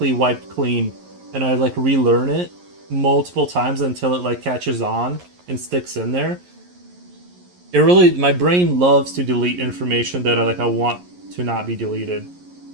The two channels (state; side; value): late; left; 11 ms